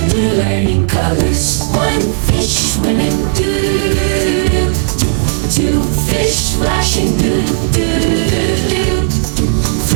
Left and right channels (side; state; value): left; silent; digital silence